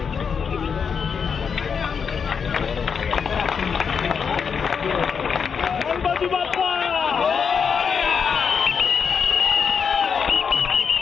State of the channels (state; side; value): quieter; right; 6.4 dB